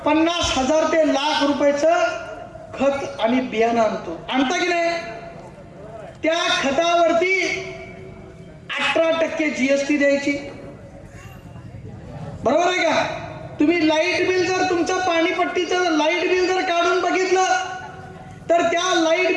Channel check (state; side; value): identical; both; correlation 1.00